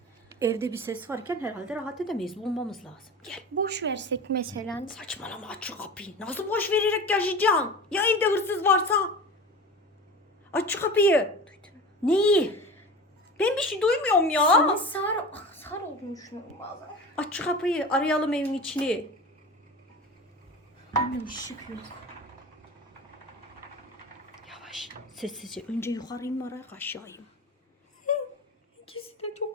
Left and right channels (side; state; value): both; normal; correlation 0.33